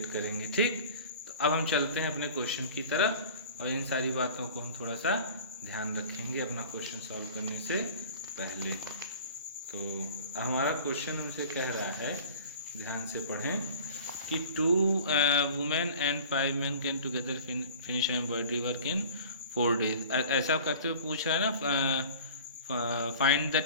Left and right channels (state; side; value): inverted; both; correlation -0.42